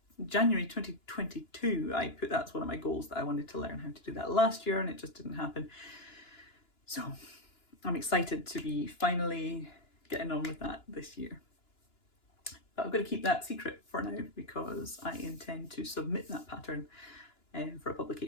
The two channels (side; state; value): right; late; 2.9 ms